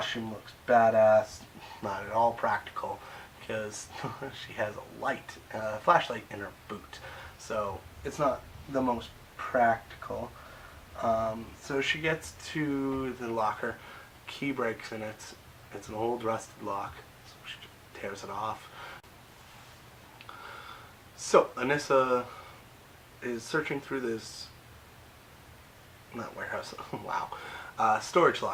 looks badass. Not at all practical because she has a flashlight in her boot, so it's not the most practical. So she gets to the locker, key breaks in it. It's an old rusted lock, so she tears it off. So Anissa is searching through this, not warehouse, wow, storage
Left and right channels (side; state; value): both; identical; correlation 1.00